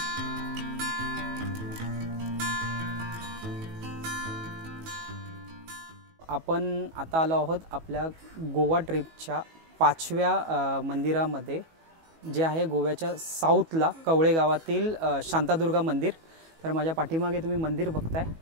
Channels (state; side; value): late; left; 18 ms